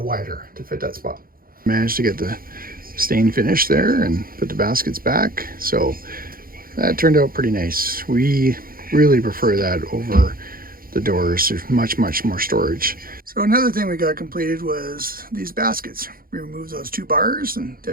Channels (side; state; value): left; late; 0.42 ms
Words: wider to fit that spot. Managed to get the stain finished there and put the baskets back, so that turned out pretty nice. We really prefer that over the doors. There's much more storage. So another thing we got completed was these baskets. We removed those two bars and